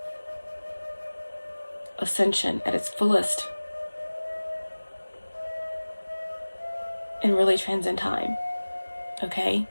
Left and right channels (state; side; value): inverted; both; correlation -1.00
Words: ascension at its fullest and really transcend time, okay?